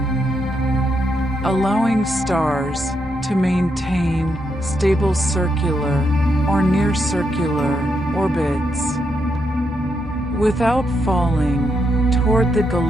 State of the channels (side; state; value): both; normal; correlation 0.80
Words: allowing stars to maintain stable circular or near circular orbits without falling toward the